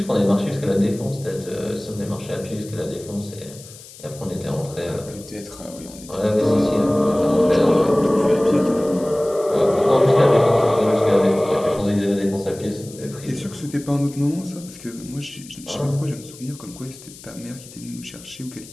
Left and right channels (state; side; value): noise; left; hiss, 18 dB below the sound